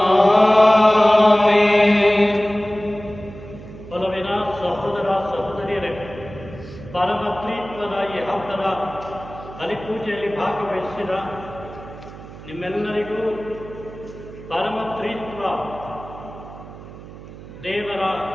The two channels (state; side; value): noise; right; hum, 15 dB below the sound